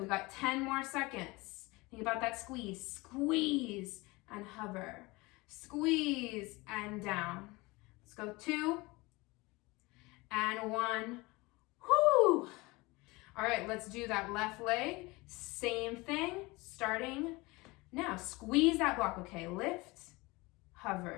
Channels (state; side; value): quieter; right; 23.3 dB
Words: we got 10 more seconds. Think about that squeeze. Squeeze and hover. Squeeze and down. Let's go 2 and 1. Whoo! All right, let's do that left leg. Same thing, starting now. Squeeze that block, okay? Lift,